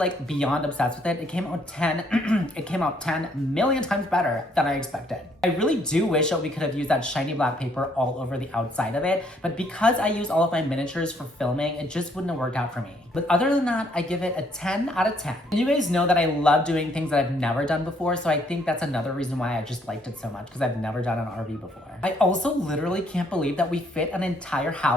beyond obsessed with it. It came out 10 million times better than I expected. I really do wish that we could have used that shiny black paper all over the outside of it, but because I use all of my miniatures for filming, it just wouldn't have worked out for me. But other than that, I give it a 10 out of 10. And you guys know that I love doing things that I've never done before, so I think that's another reason why I just liked it so much, because I've never done an RV before. I also literally can't believe that we fit an entire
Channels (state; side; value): normal; both; correlation 0.68